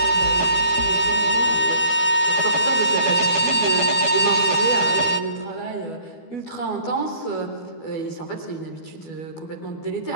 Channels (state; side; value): late; right; 12 ms